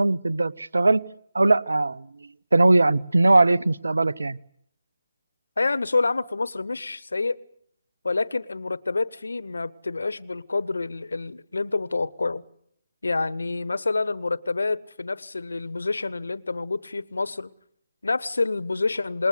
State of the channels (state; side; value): inverted; both; correlation -0.95